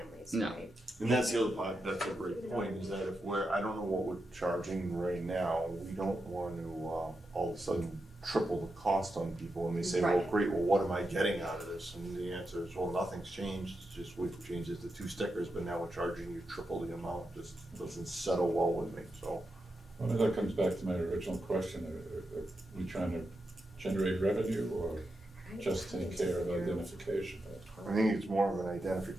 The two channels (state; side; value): normal; both; correlation 0.87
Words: No. right? And that's the other part, that's a great point, is that if I don't know what we're charging right now, we don't want to, all of a sudden triple the cost on people, and they say, well, Right. great, well, what am I getting out of this? And the answer is, well, nothing's changed, it's just we've changed it to 2 stickers, but now we're charging you triple the amount, just doesn't settle well with me, so. Well, that comes back to my original question, are we trying to generate revenue or just take care of identification? I think it's more of an